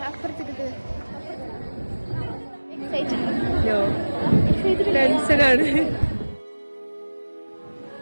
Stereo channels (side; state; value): both; inverted; correlation -1.00